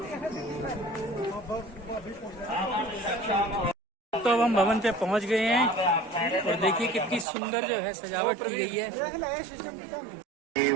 तो अब हम भवन पे पहुंच गए हैं और देखिए कितनी सुंदर जो है सजावट की गई है।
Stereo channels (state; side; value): drops out; left; at 7.2 s